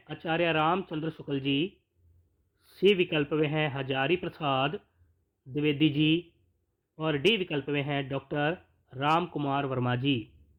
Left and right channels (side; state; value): both; identical; correlation 1.00